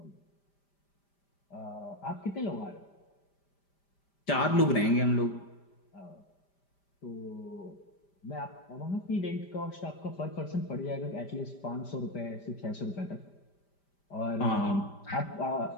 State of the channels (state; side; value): late; right; 5.0 ms